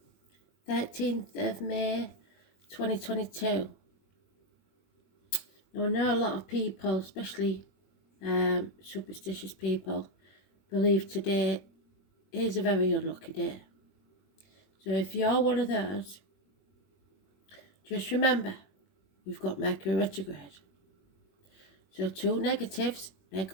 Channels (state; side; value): late; right; 21 ms